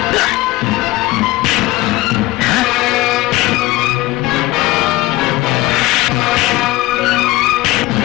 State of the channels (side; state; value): right; quieter; 18.5 dB